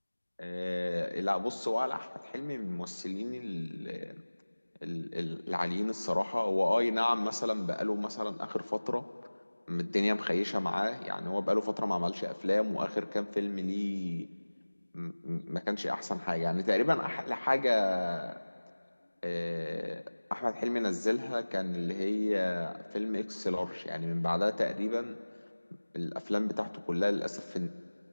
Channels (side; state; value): both; inverted; correlation -1.00